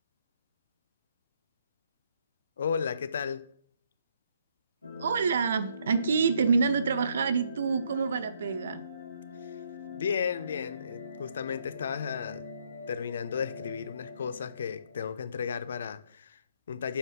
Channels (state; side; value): inverted; both; correlation -0.71